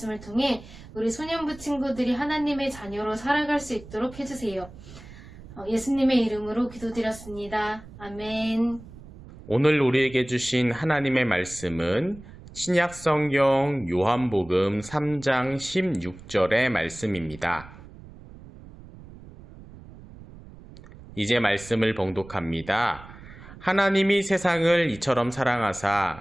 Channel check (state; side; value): noise; right; rumble, 18 dB below the sound